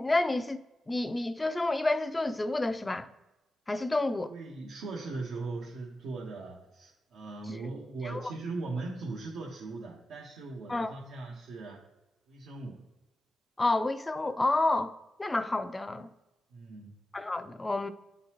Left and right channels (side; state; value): both; normal; correlation 0.94